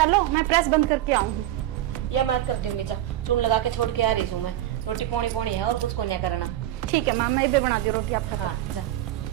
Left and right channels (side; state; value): left; quieter; 13.7 dB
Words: मैं प्रेस बंद करके आऊंगी। या मैं कर दूंगी, जा चून लगा के छोड़ के आ रही हूँ मैं। रोटी पौनी है और कुछ को नहीं करना। ठीक है माँ, मैं इधर बना दी रोटी आपका। हाँ जा।